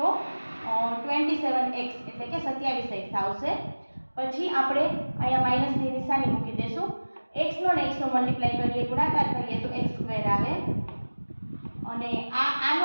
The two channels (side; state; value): both; inverted; correlation -1.00